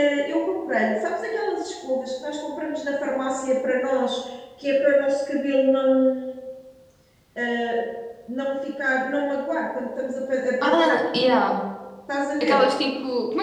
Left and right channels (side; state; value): both; identical; correlation 1.00